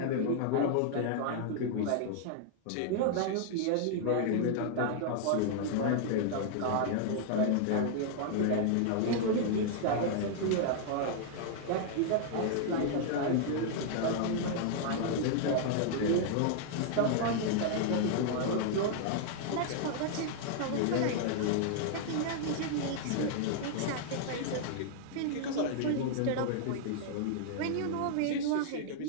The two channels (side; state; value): both; different; correlation -0.01